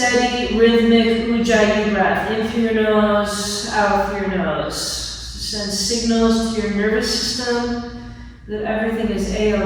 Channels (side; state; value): both; identical; correlation 1.00